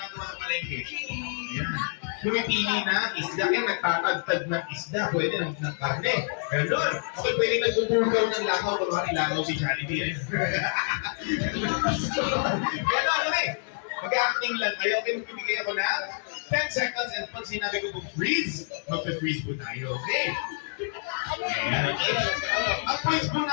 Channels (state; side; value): silent; right; digital silence